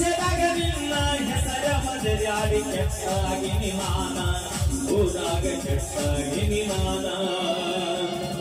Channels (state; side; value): identical; both; correlation 1.00